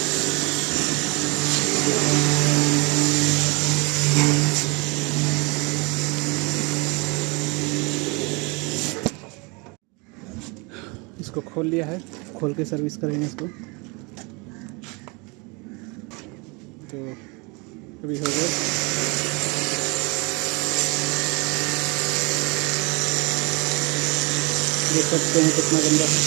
इसको खोल लिया है, खोल के सर्विस करेंगे इसको। तो अभी हो गया। देख सकते हैं कितना गंदा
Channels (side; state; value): left; quieter; 29.0 dB